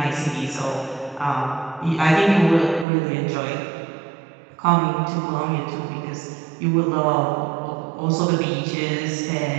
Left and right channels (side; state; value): left; drops out; at 2.9 s